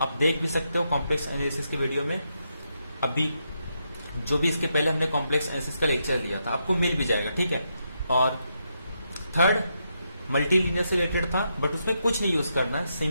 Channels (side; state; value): both; inverted; correlation -0.81